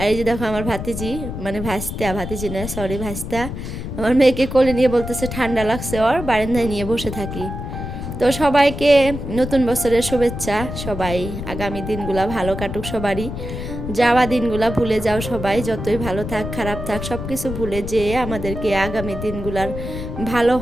এই যে দেখো আমার ভাতিজি, মানে ভাতিজি না সরি ভাস্তা, আমার মেয়েকে কোলে নিয়ে বলতেছে ঠান্ডা লাগছে, ওর বারান্দায় নিয়ে বসে থাকি। তো সবাইকে নতুন বছরের শুভেচ্ছা। সবাই আগামী দিনগুলা ভালো কাটুক সবারই, যাওয়া দিনগুলা ভুলে যাও সবাই, যতই ভালো থাক খারাপ থাক সব কিছু ভুলে যেয়ে আমাদেরকে আগামী দিনগুলার ভালো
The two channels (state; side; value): noise; left; rumble, 7 dB below the sound